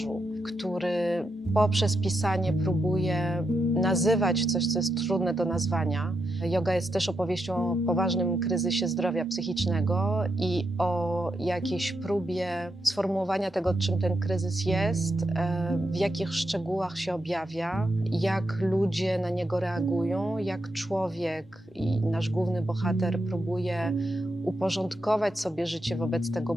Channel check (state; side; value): normal; both; correlation 0.84